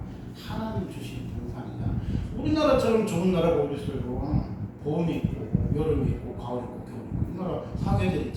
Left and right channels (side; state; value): both; identical; correlation 1.00